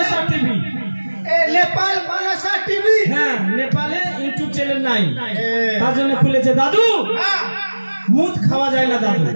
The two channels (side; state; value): both; inverted; correlation -1.00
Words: টিভি। নেপাল মনসা টিভি। হ্যাঁ নেপালে ইউটিউব চ্যানেল নাই, তার জন্য খুলেছে। দাদু মুদ খাওয়া যায় না দাদু,